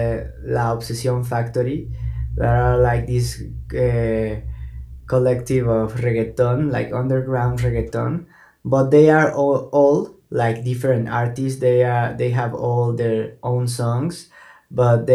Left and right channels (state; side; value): identical; both; correlation 1.00